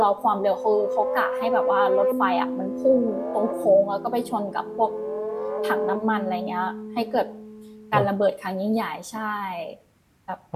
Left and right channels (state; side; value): identical; both; correlation 1.00